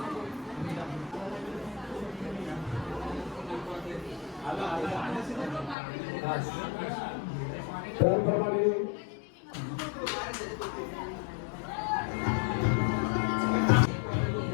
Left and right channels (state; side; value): drops out; right; at 5.8 s